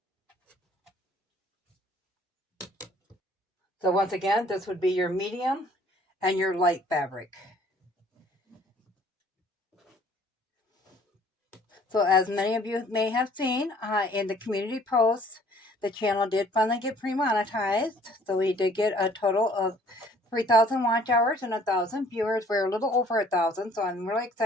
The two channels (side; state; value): both; normal; correlation 0.57